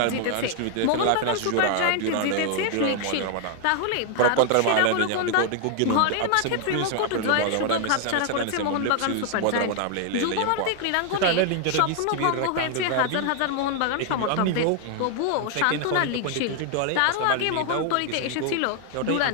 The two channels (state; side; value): different; both; correlation 0.00